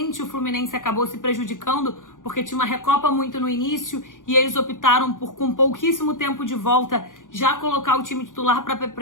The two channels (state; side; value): late; right; 0.88 ms